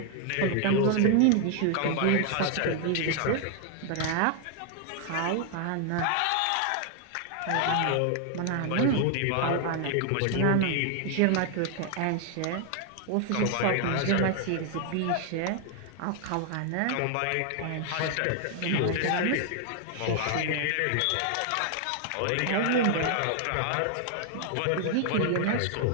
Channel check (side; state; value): both; different; correlation 0.00